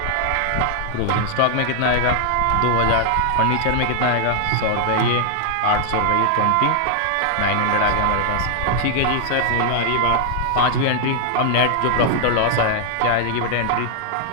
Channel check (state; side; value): different; both; correlation 0.00